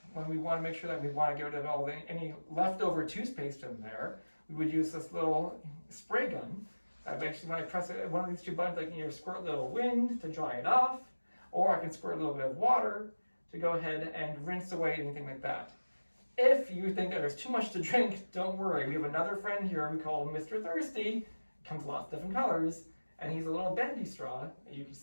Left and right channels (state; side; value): inverted; both; correlation -1.00